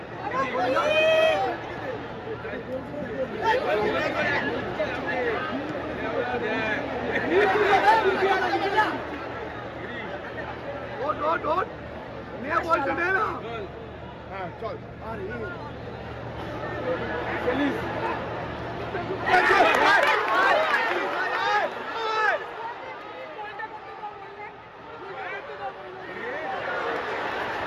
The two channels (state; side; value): identical; both; correlation 1.00